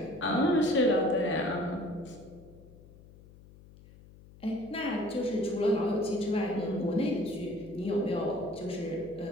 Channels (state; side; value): noise; left; hum, 22 dB below the sound